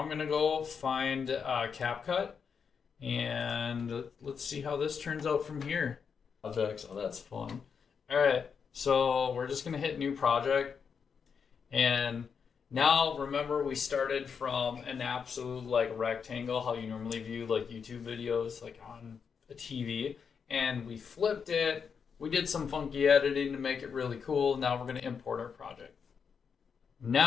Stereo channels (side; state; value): right; quieter; 6.3 dB